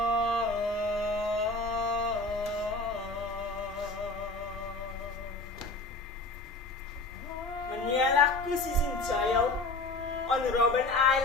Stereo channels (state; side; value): quieter; right; 3.0 dB